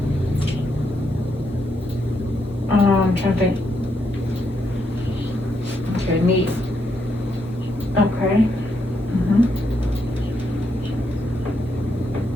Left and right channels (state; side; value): normal; both; correlation 0.79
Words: I'm trying to think. Okay, knee. Okay. Mm-hmm.